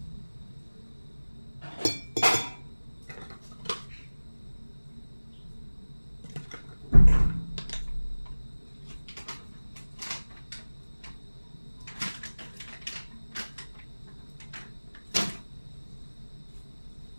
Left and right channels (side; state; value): both; inverted; correlation -1.00